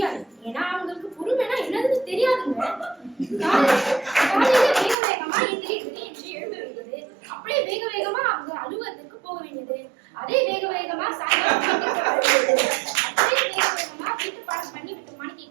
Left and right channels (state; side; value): drops out; left; at 5.0 s